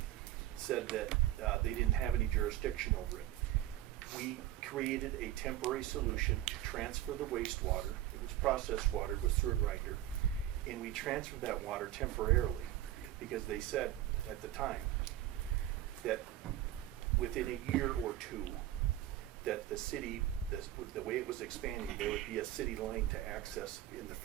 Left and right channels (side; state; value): left; quieter; 13.4 dB